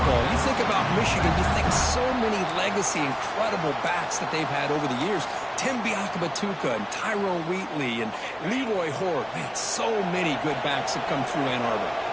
You think about Michigan, you think so many legacy, incredible backs that they've had over the years. Tim Biakabatuka and Tyrone Wheatley and Leroy Horde. Man, so many good backs have come through Ann Arbor.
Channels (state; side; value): identical; both; correlation 1.00